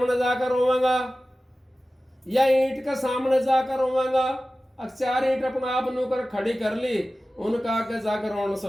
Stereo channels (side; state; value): both; normal; correlation 0.96